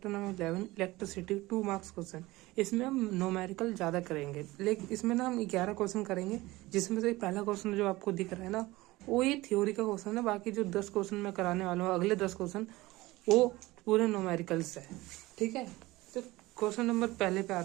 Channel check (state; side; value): quieter; left; 19.6 dB